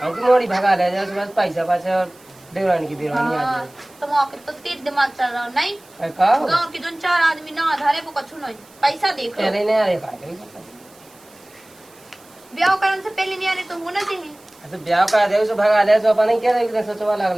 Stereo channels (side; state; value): right; noise; hiss, 27 dB below the sound